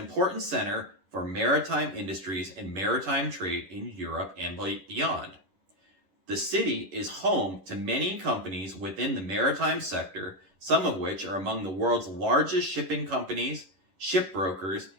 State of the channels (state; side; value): late; left; 11 ms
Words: center for maritime industries and maritime trade in Europe and beyond. The city is home to many companies within the maritime sector, some of which are among the world's largest shipping companies, shipbrokers,